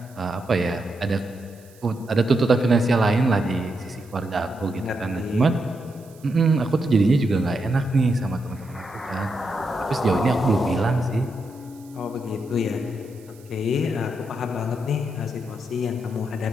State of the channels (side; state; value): right; noise; hiss, 27 dB below the sound